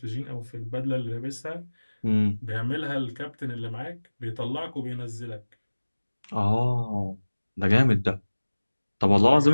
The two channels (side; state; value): both; inverted; correlation -1.00